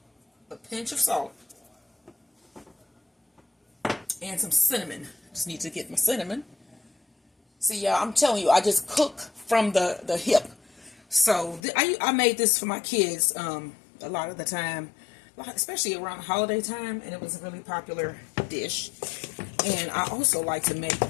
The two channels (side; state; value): right; drops out; at 11.6 s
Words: A pinch of salt. And some cinnamon. Just need to get my cinnamon. See, y'all, I'm telling you, I just cook from the hip. So I made this for my kids a lot of the time, especially around holiday time, and it was a really popular dish. And I also like to make